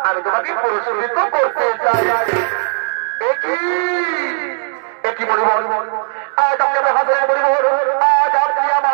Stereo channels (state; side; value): silent; left; digital silence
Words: আমি তোমাকে পুরস্কৃত করতে চাই। একই মণিবর, আজ আপনাকে হাজারে মণিবর, আজ আপনি